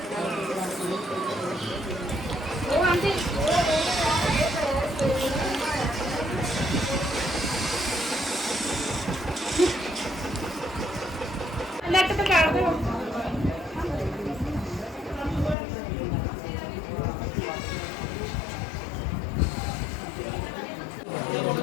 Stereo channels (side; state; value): right; drops out; at 15.6 s